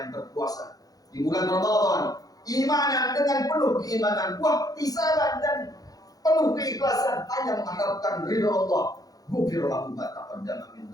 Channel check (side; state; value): right; late; 0.18 ms